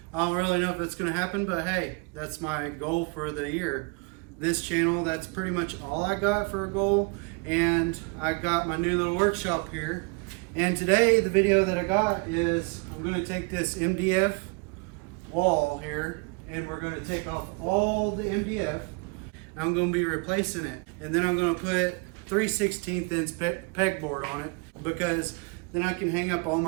don't really know if it's going to happen, but hey, that's my goal for the year. This channel, that's pretty much all I got for a goal, and I got my new little workshop here. And today, the video that I got is I'm going to take this MDF wall here, and we're going to take off all the MDF. I'm going to be replacing it, and then I'm going to put 3/16 inch pegboard on it, because then I can hang up all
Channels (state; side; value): quieter; left; 30.9 dB